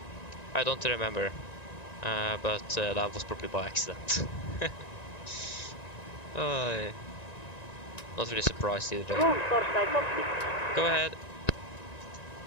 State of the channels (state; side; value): late; right; 1.9 ms